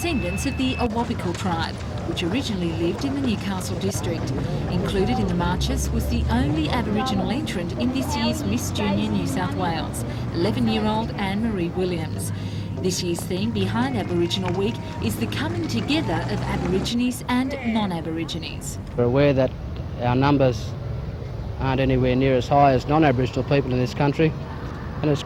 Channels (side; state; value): both; identical; correlation 1.00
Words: of the Awabakal tribe, which originally lived in the Newcastle district. Included in the marches was the only Aboriginal entrant in this year's Miss Junior New South Wales, 11-year-old Anne-Marie Williams. This year's theme behind Aboriginal Week is the coming together of Aborigines and non-Aborigines. We're aware that our numbers aren't anywhere near as high as non-Aboriginal people in this country, and it's